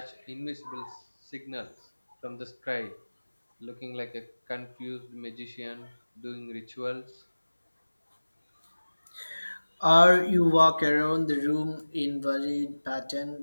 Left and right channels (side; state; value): both; inverted; correlation -1.00